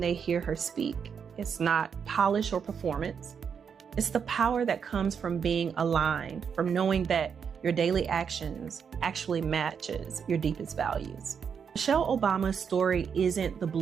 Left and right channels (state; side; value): quieter; left; 6.9 dB